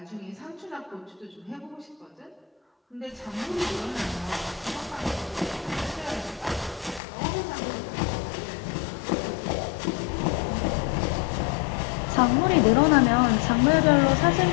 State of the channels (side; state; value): right; drops out; at 7.0 s